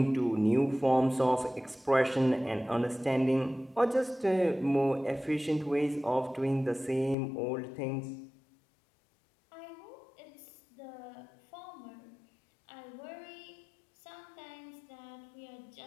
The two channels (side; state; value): right; drops out; at 7.2 s